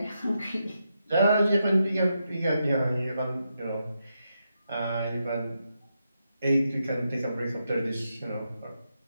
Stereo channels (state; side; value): inverted; both; correlation -0.84